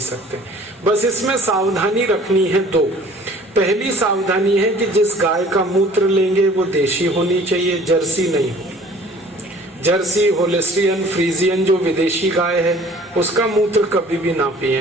हैं। बस इसमें सावधानी रखनी है दो। पहली सावधानी है कि जिस गाय का मूत्र लेंगे वो देशी होनी चाहिए, जर्सी नहीं हो। जर्सी, होलेस्टियन, फ्रीजियन जो विदेशी गाय है उसका मूत्र कभी भी ना पिए।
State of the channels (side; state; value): both; normal; correlation 0.51